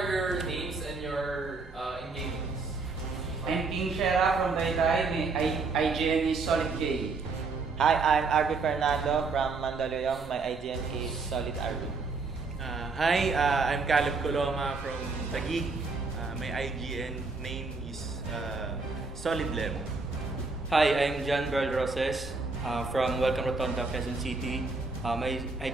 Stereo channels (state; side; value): quieter; left; 4.1 dB